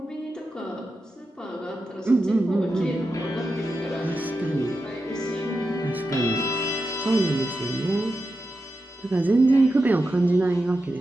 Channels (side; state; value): both; normal; correlation 0.89